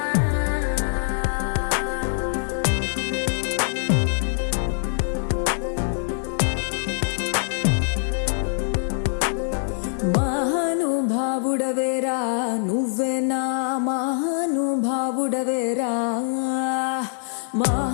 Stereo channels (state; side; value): silent; right; 63 dB below the other